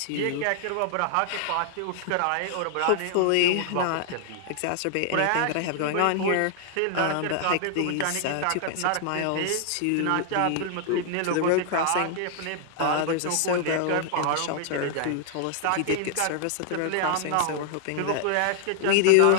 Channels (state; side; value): different; both; correlation 0.00